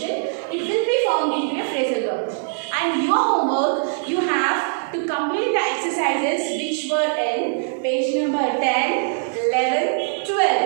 it will be formed into a phrasal verb. And your homework, you have to complete the exercises which were in page number 10, 11,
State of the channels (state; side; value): silent; left; digital silence